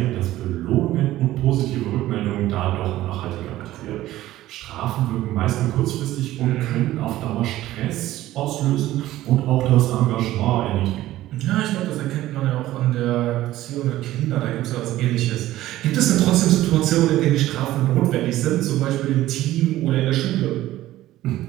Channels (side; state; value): left; quieter; 15.1 dB